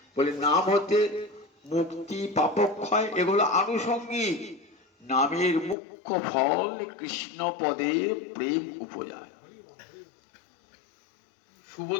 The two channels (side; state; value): right; drops out; at 5.8 s